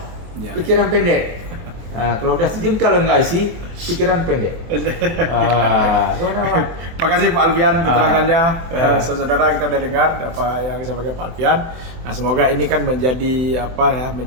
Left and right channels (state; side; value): late; left; 24 ms